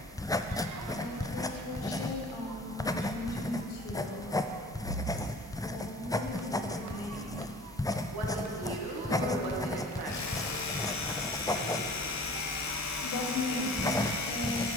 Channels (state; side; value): normal; both; correlation 0.46